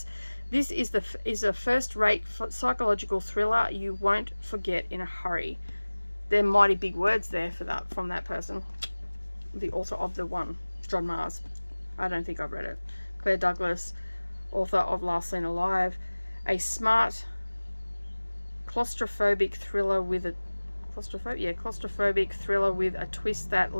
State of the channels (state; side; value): inverted; both; correlation -1.00